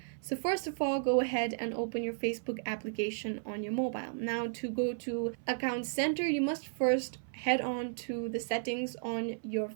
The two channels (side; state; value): left; silent; 55 dB below the other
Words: So first of all, go ahead and open your Facebook application on your mobile. Now to go to account center, you must first head on to the settings on your